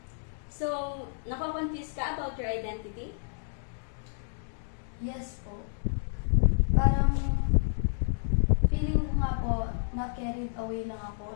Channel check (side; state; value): right; silent; digital silence